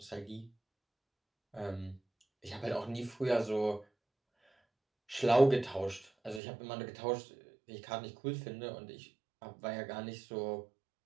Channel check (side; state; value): left; drops out; at 6.4 s